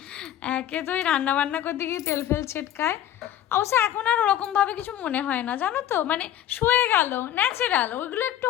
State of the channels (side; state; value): right; quieter; 11.5 dB